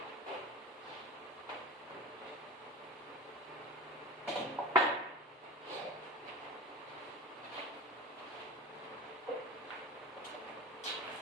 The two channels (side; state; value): both; normal; correlation 0.31